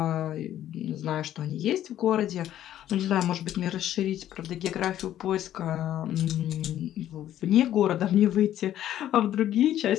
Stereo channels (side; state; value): right; quieter; 12.0 dB